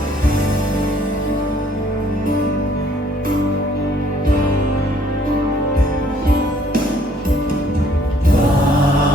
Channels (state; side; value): normal; both; correlation 0.62